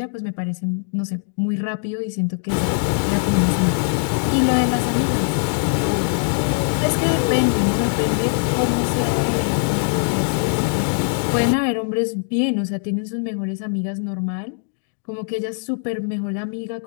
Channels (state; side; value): silent; right; 65 dB below the other